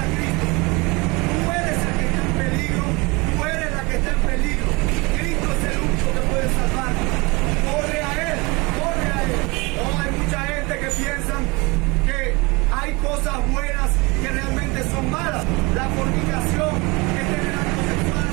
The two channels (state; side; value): quieter; left; 26.1 dB